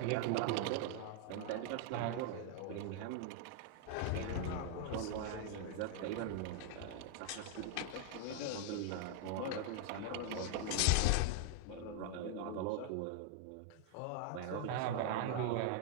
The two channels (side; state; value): both; different; correlation 0.00